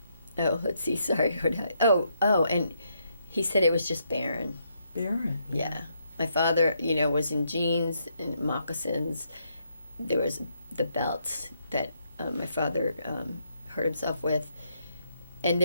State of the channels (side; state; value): both; inverted; correlation -0.76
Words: Oh, let's see. Sorry. And he said it was just barren. Barren. Yeah. My father, was in jeans and moccasins. There was the belts that my father hurt himself with. And